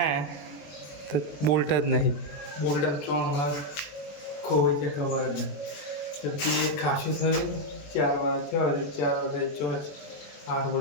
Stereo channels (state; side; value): late; right; 21 ms